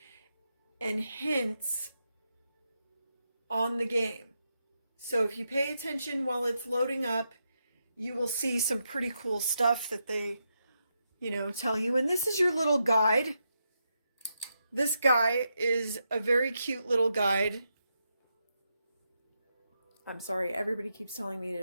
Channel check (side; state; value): both; inverted; correlation -0.84